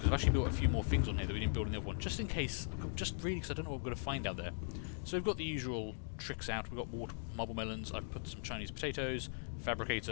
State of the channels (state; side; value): silent; right; digital silence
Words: I've actually built a few more things on here that we didn't build in the other one, just in case, just really because I don't know what we're going to find out there. So we've got the usual tricks out. We've got water, marble melons. I've put some Chinese potatoes,